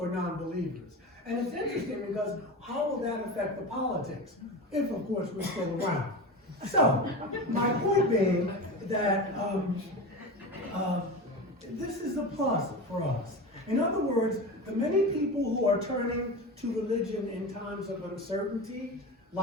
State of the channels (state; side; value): normal; both; correlation 0.27